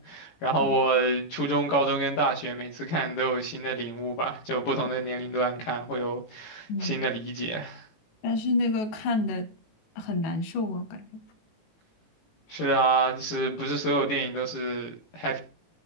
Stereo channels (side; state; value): right; late; 18 ms